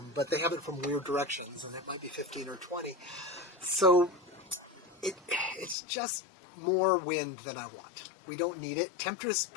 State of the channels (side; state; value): right; drops out; at 5.8 s